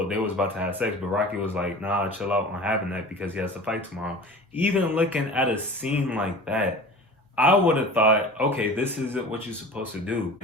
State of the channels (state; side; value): normal; both; correlation 0.38